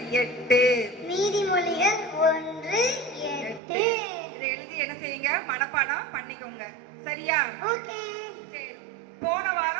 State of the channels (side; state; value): left; drops out; at 3.6 s